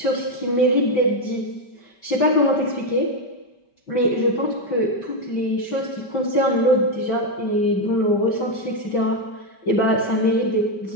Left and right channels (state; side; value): late; right; 5.1 ms